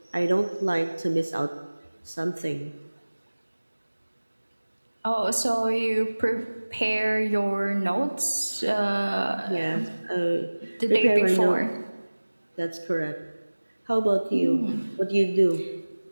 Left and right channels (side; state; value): both; inverted; correlation -1.00